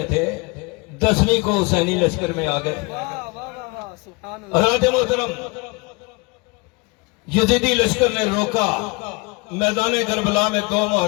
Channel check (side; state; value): right; quieter; 27.9 dB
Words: تھے. 10ویں کو حسینی لشکر میں آ گئے. حضرت محترم یزیدی لشکر نے روکا میدان کربلا میں 2